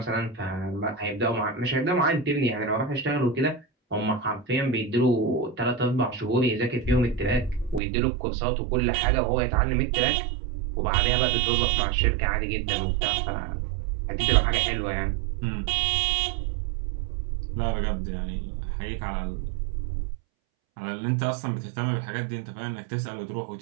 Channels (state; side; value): drops out; left; at 7.8 s